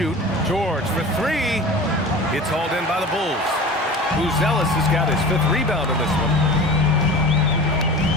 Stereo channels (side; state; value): both; normal; correlation 0.36